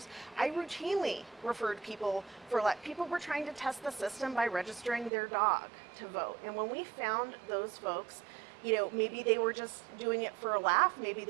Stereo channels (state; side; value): drops out; left; at 5.1 s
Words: I routinely referred people people were trying to test the system by registering their dog to vote. And when we found those folks, maybe they were just doing it for a laugh, maybe